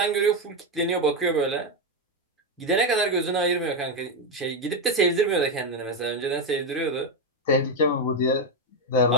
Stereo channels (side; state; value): both; normal; correlation 0.06